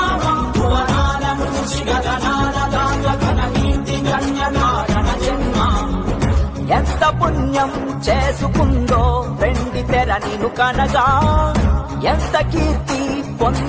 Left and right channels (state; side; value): identical; both; correlation 1.00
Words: భువనాల నుంచి గగనాల దాకా ఘన కీర్తి గణ్య కారణ జన్మ. ఎంత పుణ్యం చేసుకుందో వెండి తెర నిను కనగా, ఎంత కీర్తి